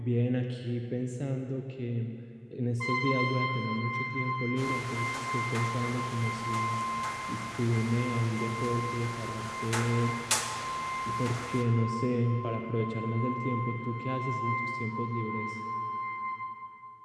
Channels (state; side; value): identical; both; correlation 1.00